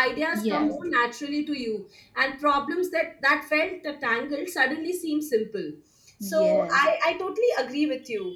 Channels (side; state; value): both; identical; correlation 1.00